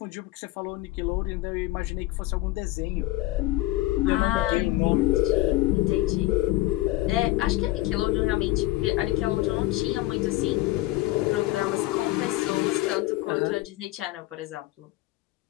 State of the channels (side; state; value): right; quieter; 18.0 dB